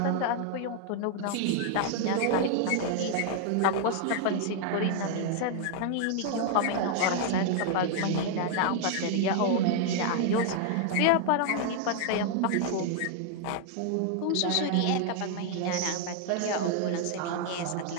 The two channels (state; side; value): different; both; correlation 0.00